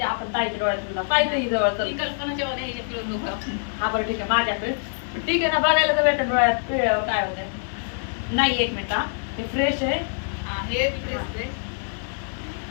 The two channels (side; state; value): right; silent; digital silence